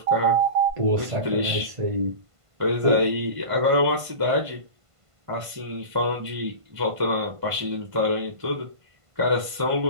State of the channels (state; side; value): late; left; 1.5 ms